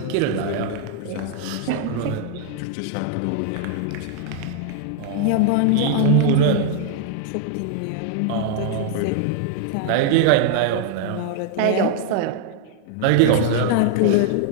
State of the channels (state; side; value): different; both; correlation 0.00